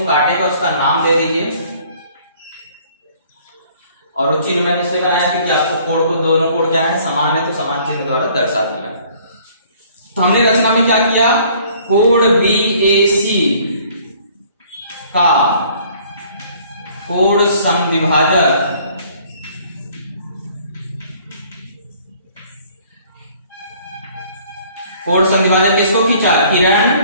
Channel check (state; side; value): inverted; both; correlation -0.57